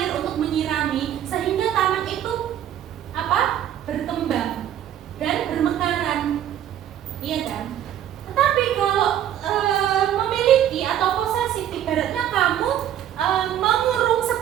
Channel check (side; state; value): left; quieter; 10.8 dB